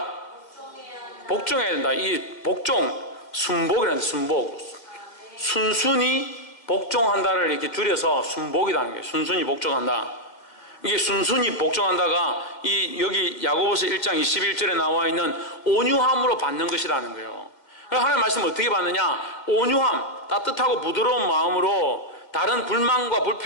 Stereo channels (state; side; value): late; right; 2.0 ms